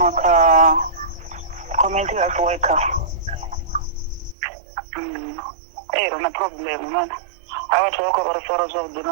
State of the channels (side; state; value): left; drops out; at 4.4 s